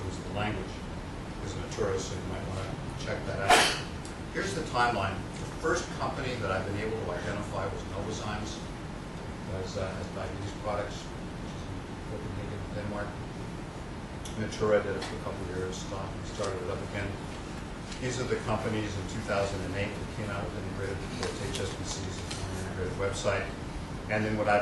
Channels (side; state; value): both; identical; correlation 1.00